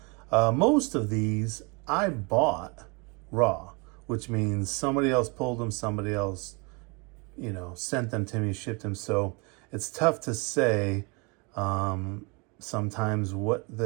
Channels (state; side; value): quieter; left; 30.5 dB